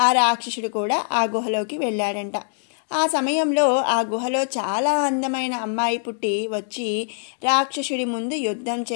ఆ రాక్షసుడు కూడా ఆ గుహలోకి వెళ్ళాడంట. ఆ సమయంలో ఆ గుహలో చాలా అందమైన అమ్మాయి పుట్టి వచ్చి రాక్షసుడి ముందు యుద్ధం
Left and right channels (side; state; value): right; silent; 63 dB below the other